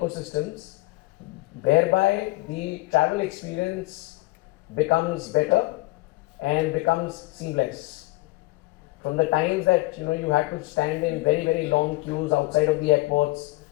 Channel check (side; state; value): right; quieter; 21.7 dB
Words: whereby the travel experience becomes better and becomes seamless. From the times that you had to stand in very, very long queues outside of the airports,